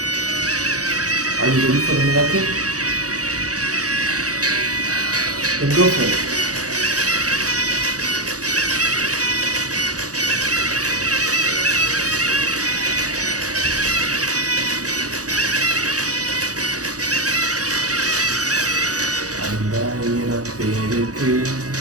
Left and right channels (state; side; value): late; left; 0.67 ms